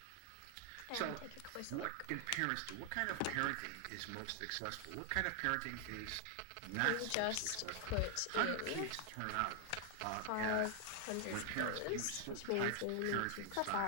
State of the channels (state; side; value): different; both; correlation 0.00